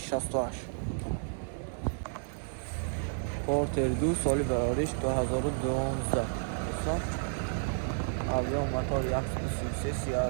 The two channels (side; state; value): left; silent; 57 dB below the other